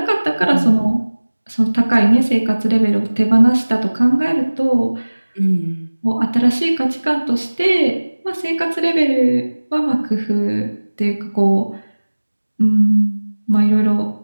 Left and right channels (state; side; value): inverted; both; correlation -1.00